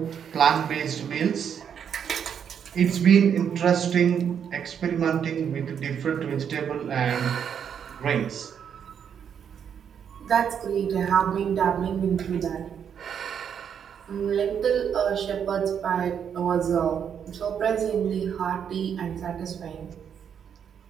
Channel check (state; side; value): quieter; left; 8.0 dB